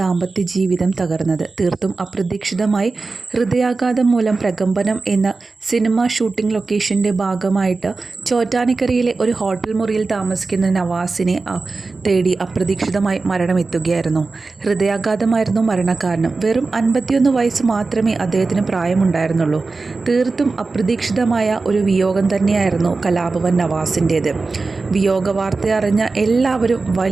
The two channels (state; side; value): quieter; left; 3.9 dB